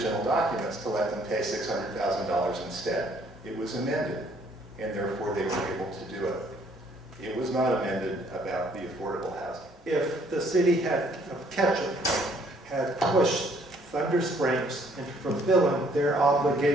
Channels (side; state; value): both; normal; correlation 0.63